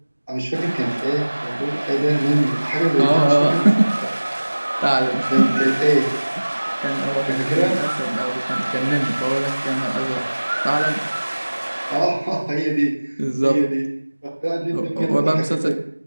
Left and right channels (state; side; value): inverted; both; correlation -1.00